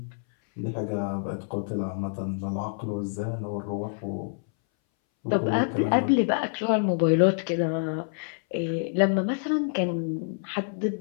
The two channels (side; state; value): right; silent; 60 dB below the other